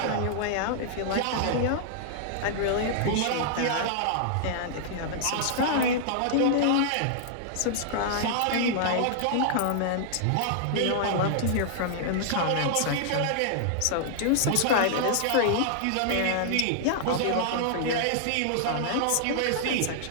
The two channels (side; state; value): both; different; correlation -0.01